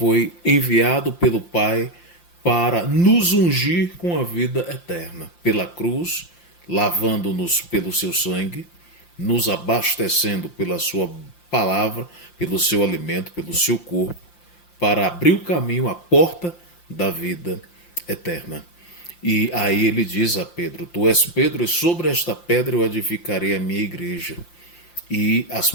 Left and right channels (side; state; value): right; late; 5.8 ms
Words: enviado pelo Pai para nos ungir com a vida eterna, pela cruz, lavando-nos pelo seu sangue, nos abastecendo pela sua palavra, pelo seu alimento, pelo seu corpo, para abrir o caminho, a porta da vida eterna. E aí ele diz a Pedro: tu és Pedro, e sobre esta pedra eu edificarei a minha igreja, e as